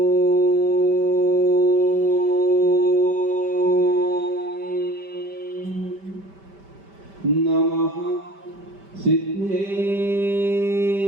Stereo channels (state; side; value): late; left; 5.1 ms